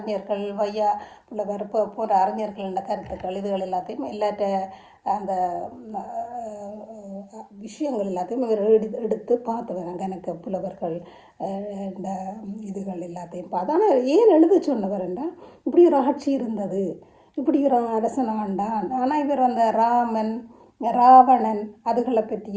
வையா புலவர் போன்ற அறிஞர்களோட கருத்துக்கள் இதுகள் எல்லாத்தையும் எல்லாட்ட அந்த விஷயங்கள் எல்லாத்தையும் இவர் எடுத்து பார்த்து வராங்க. எனக்கு புலவர்கள் இந்த இதுகள் எல்லாத்தையும் பார்த்து. ஆனால் ஏன் எழுத சொன்னவர்ண்டா, இப்படி ஒரு ஆட்சி இருந்தது, இப்படி ஒரு அரசன் ஆண்டான். ஆனால் இவர் ராமன் ராவணன் அதுகளை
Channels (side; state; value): both; identical; correlation 1.00